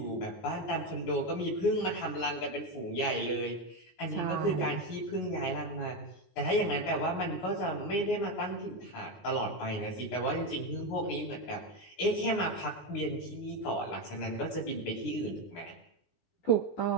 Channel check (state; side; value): late; right; 19 ms